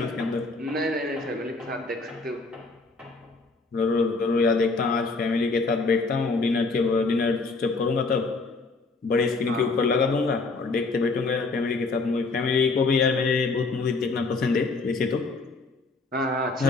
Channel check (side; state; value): right; quieter; 3.7 dB